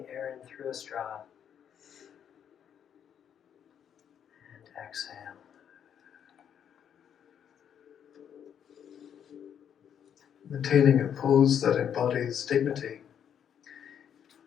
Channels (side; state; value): right; quieter; 8.7 dB